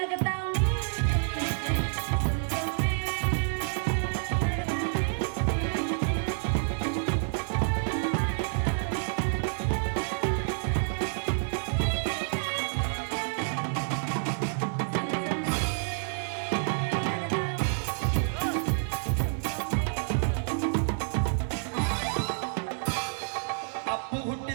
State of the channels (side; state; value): left; silent; digital silence